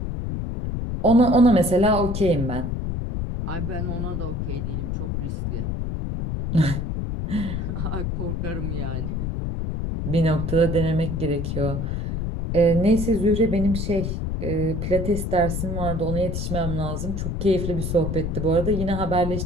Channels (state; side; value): noise; left; rumble, 3 dB below the sound